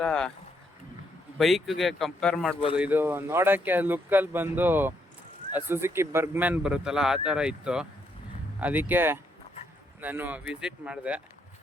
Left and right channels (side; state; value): both; normal; correlation 0.75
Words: ಬೈಕ್ಗೆ ಕಂಪೇರ್ ಮಾಡ್ಬೋದು. ಇದು ನೋಡೋಕ್ಕೆ ಲುಕ್ಕಲ್ಲಿ ಬಂದು ಸುಜುಕಿ ಬರ್ಗ್ಮ್ಯಾನ್ ಬರುತ್ತಲ್ಲ ಆ ಥರ ಇತ್ತು, ಅದಕ್ಕೆ ನಾನು ವಿಸಿಟ್ ಮಾಡಿದೆ.